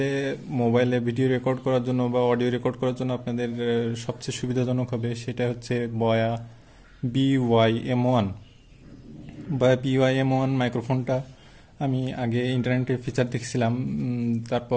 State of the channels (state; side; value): identical; both; correlation 1.00